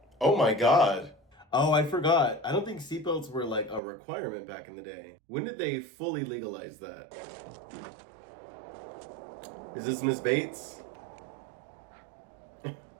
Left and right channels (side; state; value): left; drops out; at 3.8 s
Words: Oh my god. Oh, I forgot. I don't think seatbelts were like a requirement back in the day. When did they fully legalize that? Is this Miss Bates?